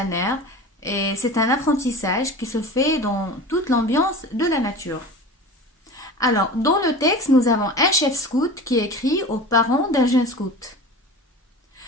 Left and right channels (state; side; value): normal; both; correlation 0.34